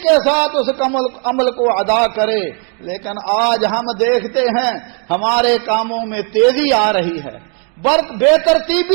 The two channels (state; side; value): quieter; left; 39.0 dB